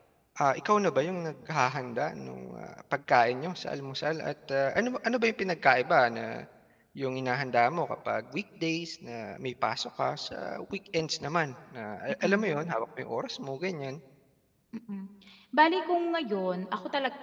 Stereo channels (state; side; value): identical; both; correlation 1.00